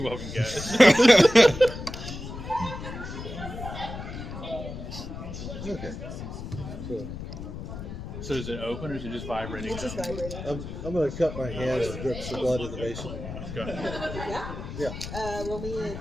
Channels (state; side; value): noise; left; rumble, 9 dB below the sound